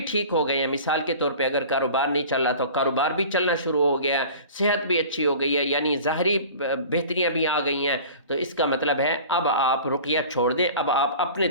ٹھیک ہو گئے ہیں، مثال کے طور پہ اگر کاروبار نہیں چل رہا تو کاروبار بھی چلنا شروع ہو گیا، صحت بھی اچھی ہو گئی ہے، یعنی ظاہری بہتریاں بھی آ گئی ہیں، تو اس کا مطلب ہے اب آپ رقیہ چھوڑ دیں، اب آپ اپنے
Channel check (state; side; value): inverted; both; correlation -0.40